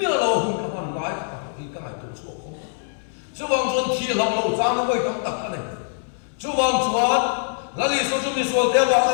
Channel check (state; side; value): silent; right; 63 dB below the other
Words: lâu không các bạn nói thì các ngài tổ chức không chú vang chuan thi lam lo chang nó với tam tak ka nei chú vang chuan la li so chu mi so te wa